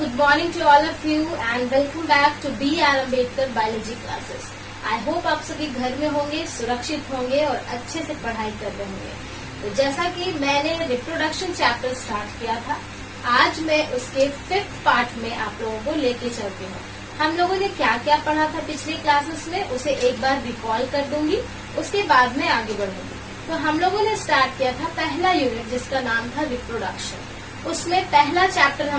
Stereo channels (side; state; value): both; identical; correlation 1.00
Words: morning to all of you and welcome back to B.R. Ambedkar Biology classes. I hope आप सभी घर में होंगे, सुरक्षित होंगे और अच्छे से पढ़ाई कर रहे होंगे। तो जैसा कि मैंने रिप्रोडक्शन चैप्टर स्टार्ट किया था, आज मैं उसके 5th पार्ट में आप लोगों को लेके चलती हूँ। हम लोगों ने क्या क्या पढ़ा था पिछले क्लासेस में, उसे एक बार रिकॉल कर दूंगी, उसके बाद में आगे बढ़ूंगी। तो हम लोगों ने स्टार्ट किया था पहला यूनिट जिसका नाम था रिप्रोडक्शन। उसमें पहला चैप्टर